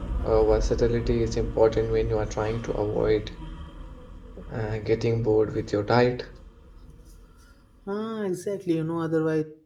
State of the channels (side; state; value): both; identical; correlation 1.00